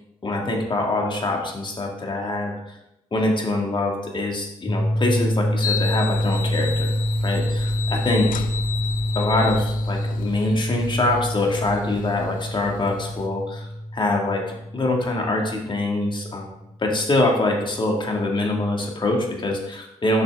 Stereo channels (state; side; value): normal; both; correlation 0.67